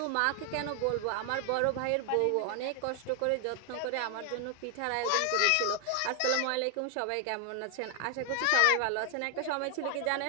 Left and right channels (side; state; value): both; different; correlation 0.00